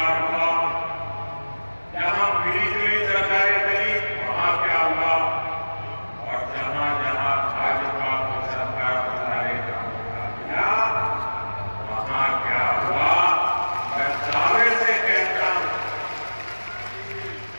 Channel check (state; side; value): inverted; both; correlation -1.00